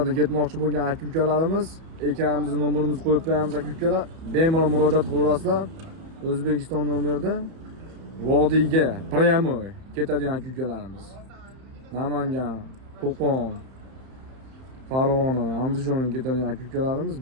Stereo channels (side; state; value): left; late; 31 ms